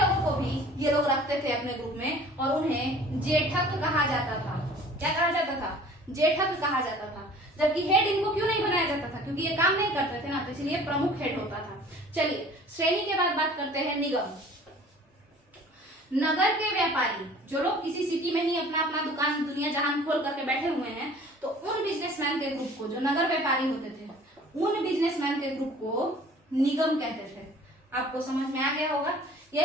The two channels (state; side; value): normal; both; correlation 0.48